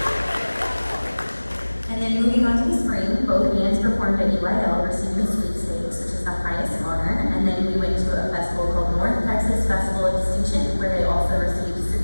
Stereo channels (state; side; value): inverted; both; correlation -1.00